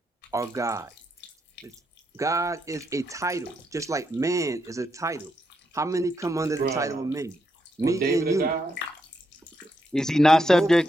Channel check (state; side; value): normal; both; correlation 0.81